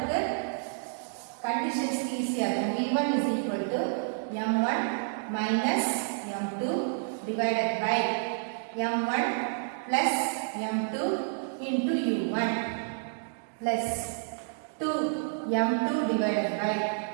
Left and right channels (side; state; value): left; silent; digital silence